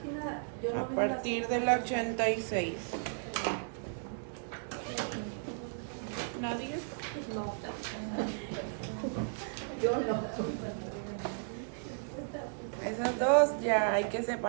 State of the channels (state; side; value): silent; left; digital silence